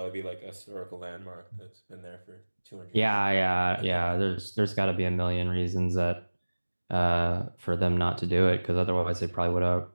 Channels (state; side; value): inverted; both; correlation -1.00